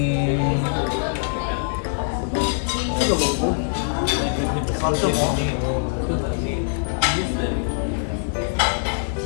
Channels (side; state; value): right; silent; digital silence